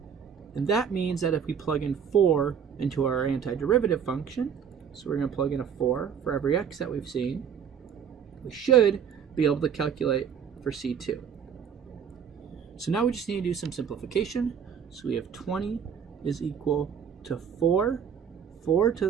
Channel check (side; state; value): left; quieter; 7.6 dB